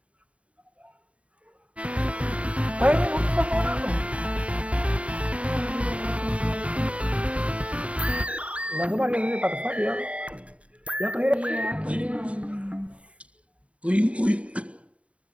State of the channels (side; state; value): left; late; 0.064 ms